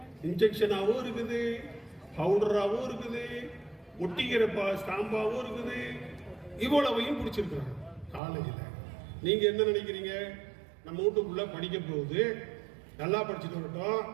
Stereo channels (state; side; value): drops out; left; at 8.2 s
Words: இன்ஜெக்ஷனாவும் இருக்குது, பவுடராவும் இருக்குது, ஒட்டிக்கிற ஸ்டாம்பாவும் இருக்குது. இவ்வளவையும் பிடிச்சிருக்கிறாங்க காலேஜில். நீங்க என்ன நினைக்கிறீங்க? நம்ம வீட்டுக்குள்ள படிக்க போகுது, நல்லா படிச்சுட்டு வரட்டும்,